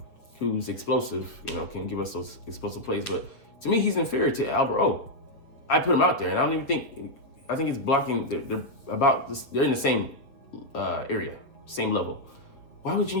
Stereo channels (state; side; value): late; right; 7.1 ms